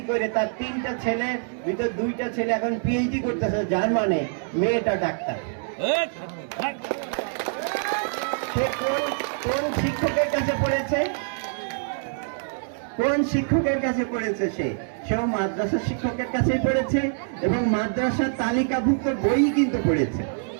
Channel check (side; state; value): left; silent; digital silence